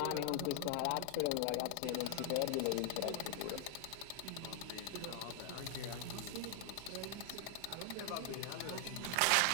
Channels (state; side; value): different; both; correlation 0.00